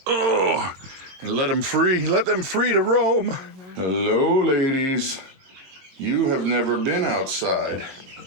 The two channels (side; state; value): left; late; 22 ms